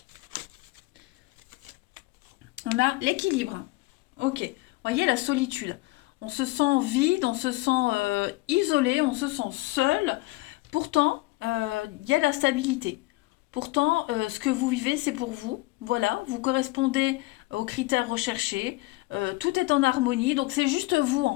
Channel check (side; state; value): right; quieter; 21.5 dB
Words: On a l'équilibre. Ok. Voyez, la solitude. On se sent vide, on se sent isolé, on se sent seul. Pourtant, il y a la stabilité. Pourtant, ce que vous vivez, c'est pour vous. Voilà, vous correspondez aux critères recherchés. Tout est en harmonie. Donc, c'est juste vous,